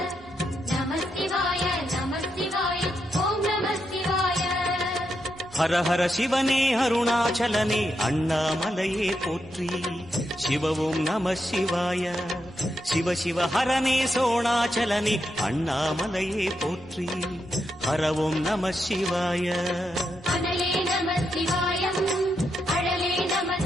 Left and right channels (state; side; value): noise; left; rumble, 25 dB below the sound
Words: ஹர ஹர சிவனே அருணாச்சலனே அண்ணாமலையே போற்றி. சிவவும் நம சிவாய. சிவ சிவ ஹரனே சோணாச்சலனே அண்ணாமலையே போற்றி. ஹரவும் நம சிவாய. அனலே நம சிவாயம், அழலே நம